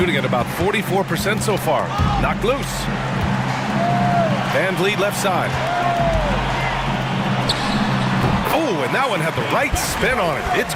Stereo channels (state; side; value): identical; both; correlation 1.00